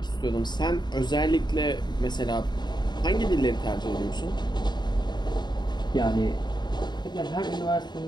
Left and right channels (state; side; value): late; right; 0.21 ms